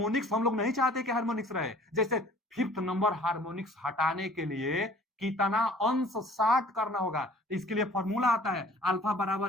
हम लोग नहीं चाहते कि हार्मोनिक्स रहे। जैसे फिफ्थ नंबर हार्मोनिक्स हटाने के लिए कितना अंश 60 करना होगा, इसके लिए फॉर्मूला आता है अल्फा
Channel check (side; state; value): both; normal; correlation 0.52